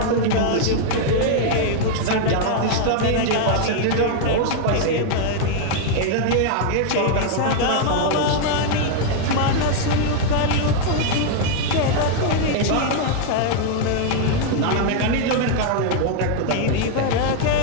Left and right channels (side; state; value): both; different; correlation 0.00